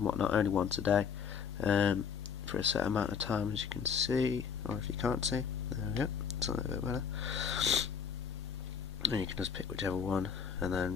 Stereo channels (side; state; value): right; quieter; 6.9 dB